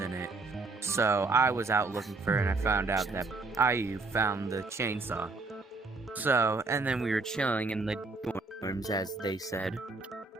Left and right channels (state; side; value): quieter; left; 3.6 dB